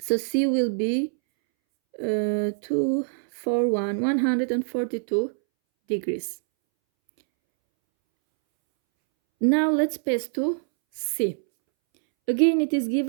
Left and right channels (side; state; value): left; silent; 62 dB below the other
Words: C will be 142 degrees. Now let's pass to C. Again, it is